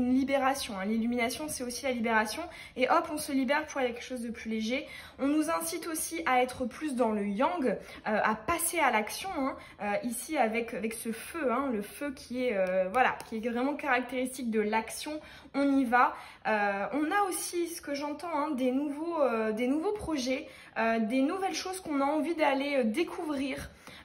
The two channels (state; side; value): identical; both; correlation 1.00